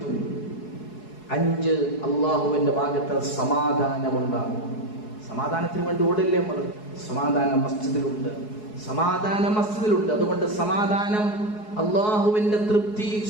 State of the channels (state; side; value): late; right; 4.7 ms